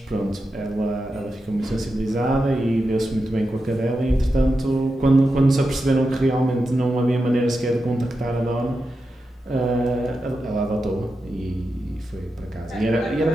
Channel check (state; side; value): normal; both; correlation 0.89